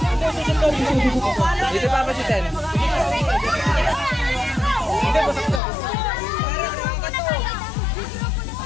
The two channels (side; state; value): right; drops out; at 5.6 s